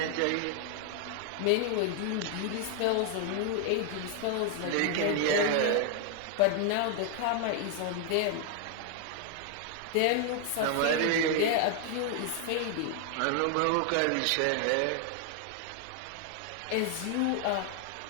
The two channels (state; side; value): different; both; correlation 0.00